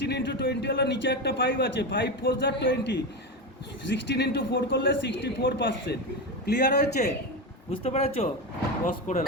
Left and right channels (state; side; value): normal; both; correlation 0.17